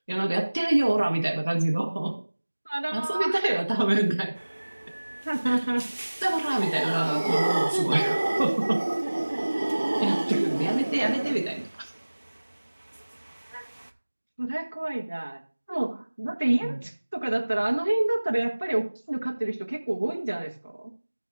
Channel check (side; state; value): both; inverted; correlation -1.00